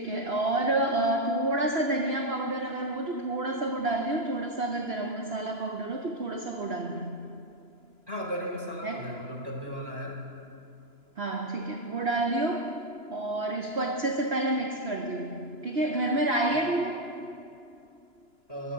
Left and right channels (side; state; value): left; late; 2.9 ms